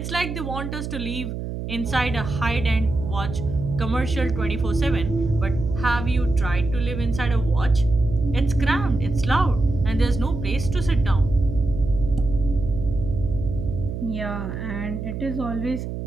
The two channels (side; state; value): right; noise; hum, 6 dB below the sound